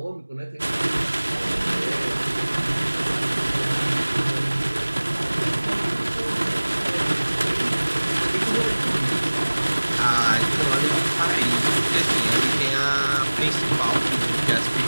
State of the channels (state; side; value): inverted; both; correlation -1.00